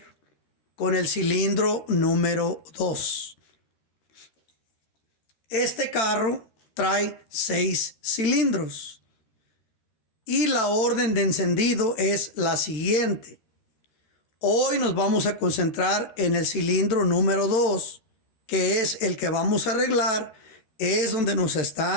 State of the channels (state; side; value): late; right; 13 ms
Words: con el cilindro número 2. Este carro trae 6 cilindros. Y la orden de encendido es la siguiente. Hoy nos vamos a concentrar en el cilindro número 2, que es el que vamos a arreglar. Es donde nos